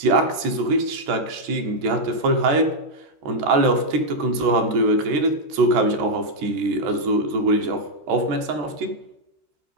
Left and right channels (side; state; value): left; late; 13 ms